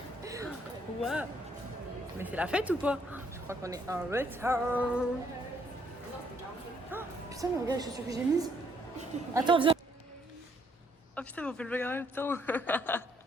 Waouh. Mais c'est la fête ou quoi? Je crois qu'on est en retard. Oh, putain, mais regarde les chaussures que j'ai mises. Attends, viens. Oh putain, mais on fait le vlog en même temps.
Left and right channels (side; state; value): both; normal; correlation 0.69